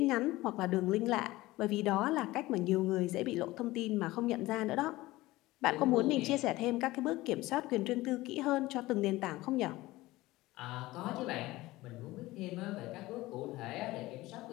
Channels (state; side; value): quieter; right; 18.7 dB